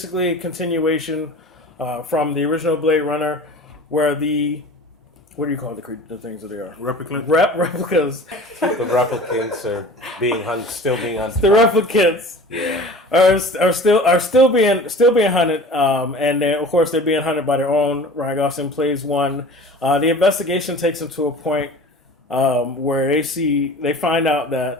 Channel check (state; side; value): normal; both; correlation 0.41